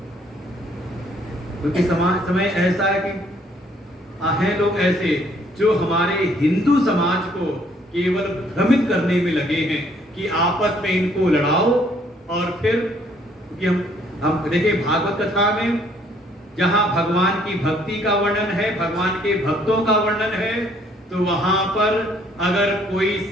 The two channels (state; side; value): normal; both; correlation 0.64